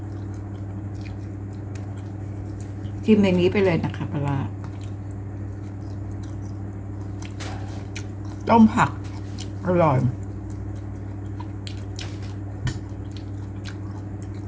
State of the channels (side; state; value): both; identical; correlation 1.00